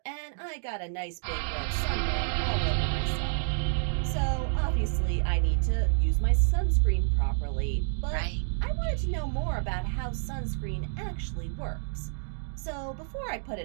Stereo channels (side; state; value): left; silent; digital silence